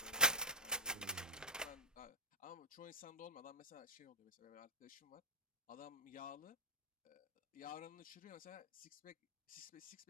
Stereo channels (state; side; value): normal; both; correlation -0.14